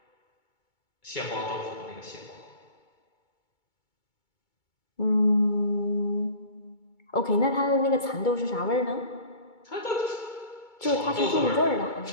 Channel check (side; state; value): right; late; 2.3 ms